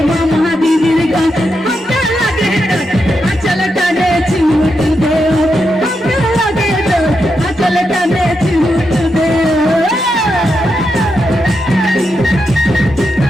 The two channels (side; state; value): both; normal; correlation 0.85